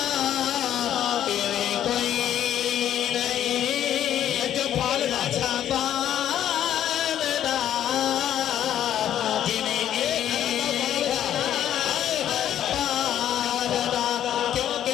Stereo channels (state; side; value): quieter; right; 10.9 dB